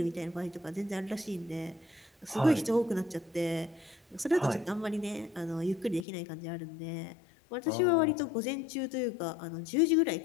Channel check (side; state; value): right; drops out; at 6.1 s